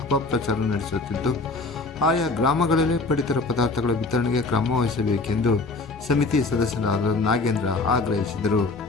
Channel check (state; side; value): quieter; right; 3.6 dB